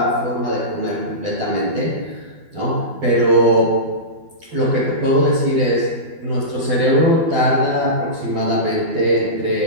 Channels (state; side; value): late; left; 12 ms